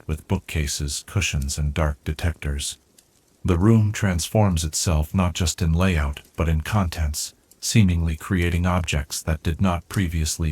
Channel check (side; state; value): both; identical; correlation 1.00